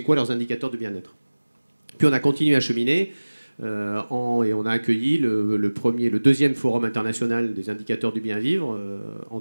quoi leurs indicateurs de bien-être. Puis on a continué à cheminer et on a accueilli le deuxième forum international des indicateurs du bien-vivre en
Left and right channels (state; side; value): inverted; both; correlation -1.00